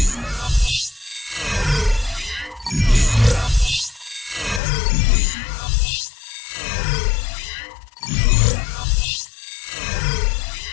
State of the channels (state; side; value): drops out; right; at 4.6 s